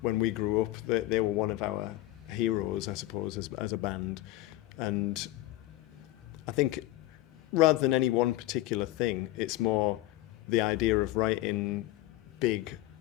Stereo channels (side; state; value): right; quieter; 16.6 dB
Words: when we grew up, they were one of our heroes, I suppose, as a band. And I think rather than any one particular thing, it's more the idea of writing big